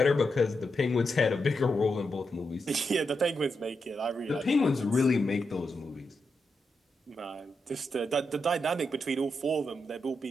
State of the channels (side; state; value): both; normal; correlation 0.85